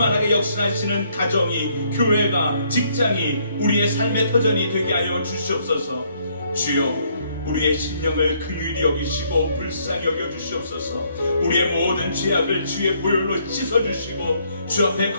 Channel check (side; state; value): both; inverted; correlation -0.69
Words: 역사하시는 가정이, 교회가, 직장이 우리의 삶의 터전이 되게 하여 주시옵소서. 주여, 우리의 심령을 긍휼히 여기시고 불쌍히 여겨주시옵소서. 우리의 모든 죄악을 주의 보혈로 씻어주시고 주 앞에